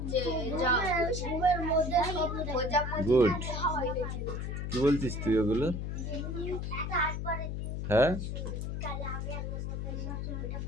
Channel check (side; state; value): left; noise; hum, 3 dB below the sound